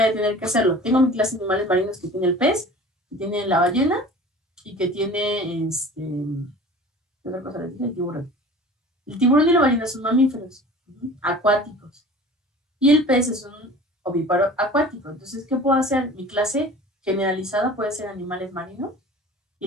a tener que hacerlo? Tengo mi clase de animales marinos que tiene el pez, que tiene la ballena y que tiene ¿qué otra cosa le dije? El tiburón. El tiburón y la ballena son mamíferos acuáticos. Y el pez es un ovíparo acuático. Entonces, ¿qué puedo hacer? Mi clase generalizada puede ser animales marinos y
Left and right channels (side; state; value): both; normal; correlation 0.42